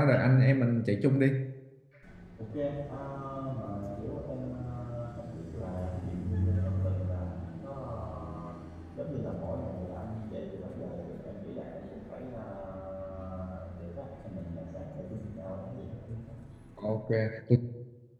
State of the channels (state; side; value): identical; both; correlation 1.00